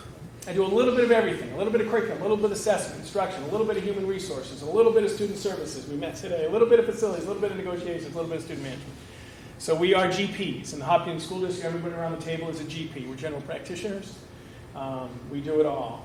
I do a little bit of everything. A little bit of curriculum, a little bit of assessment, instruction, a little bit of human resources, a little bit of student services. We met today. A little bit of facilities, a little bit of negotiations, a little bit of student management. So we are GPs. In the Hopkinton School District, everybody around the table is a GP. We're general practitioners. We do it all.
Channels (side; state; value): both; identical; correlation 1.00